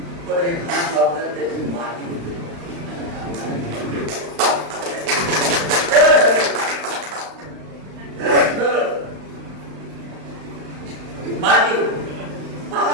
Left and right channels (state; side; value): late; left; 35 ms